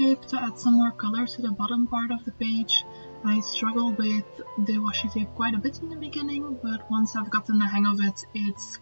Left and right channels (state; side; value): inverted; both; correlation -1.00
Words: to add some more color to the bottom part of the page. I struggled with the washi tape quite a bit in the beginning, but once I've gotten the hang of it, it's